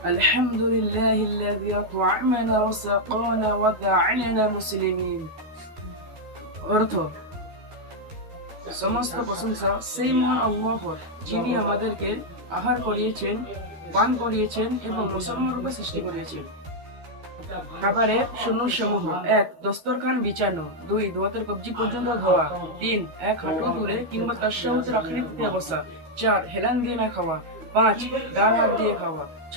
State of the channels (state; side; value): late; left; 13 ms